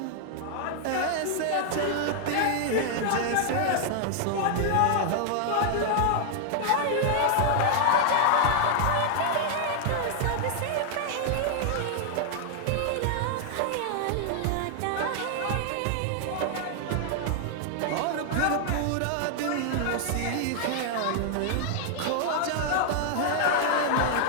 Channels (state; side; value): different; both; correlation 0.00